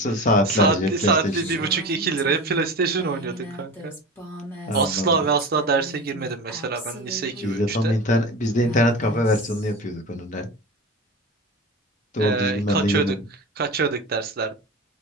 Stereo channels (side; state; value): both; normal; correlation 0.29